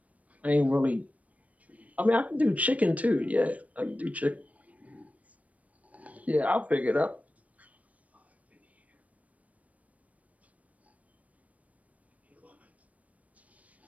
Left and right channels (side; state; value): left; late; 0.068 ms